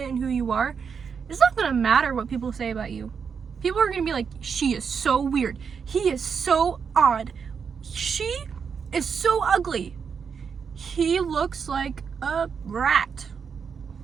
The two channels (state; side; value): quieter; left; 6.3 dB